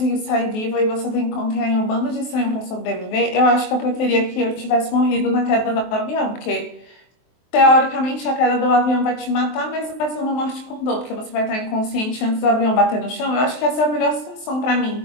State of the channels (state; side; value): late; right; 23 ms